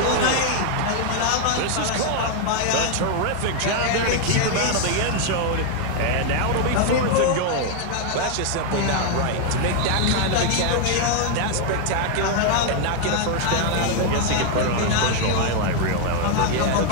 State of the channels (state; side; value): different; both; correlation 0.00